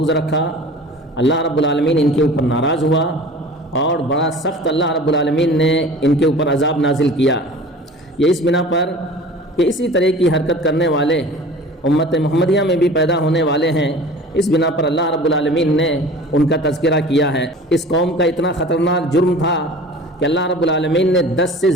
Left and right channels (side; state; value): both; normal; correlation 0.41